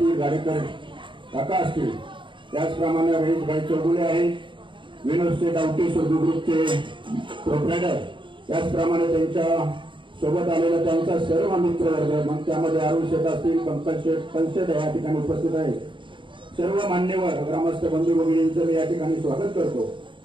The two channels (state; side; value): late; left; 0.24 ms